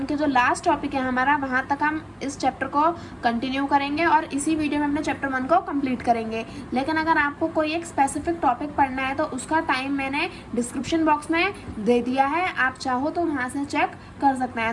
के जो लास्ट टॉपिक है हमारा, वहाँ तक हम इस चैप्टर को कंटिन्यू करेंगे और इसी वीडियो में अपने चैप्टर 1 को कंप्लीट करेंगे। लेकिन अगर आपको कोई एक स्पेसिफिक टॉपिक पढ़ना है तो उसका टाइम मैंने डिस्क्रिप्शन बॉक्स में दे दिया है, आप चाहो तो वहाँ से चेक कर सकते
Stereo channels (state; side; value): identical; both; correlation 1.00